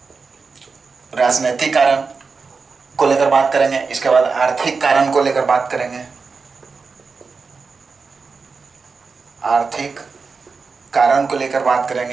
राजनीतिक कारण को लेकर बात करेंगे। इसके बाद आर्थिक कारण को लेकर बात करेंगे, आर्थिक कारण को लेकर बात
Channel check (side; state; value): left; quieter; 4.7 dB